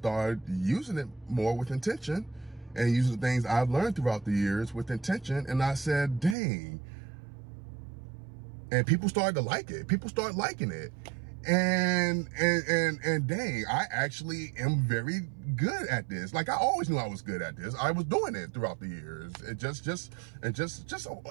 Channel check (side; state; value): left; drops out; at 6.4 s